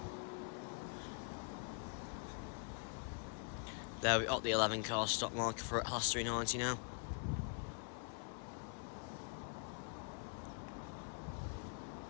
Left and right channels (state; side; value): quieter; right; 39.6 dB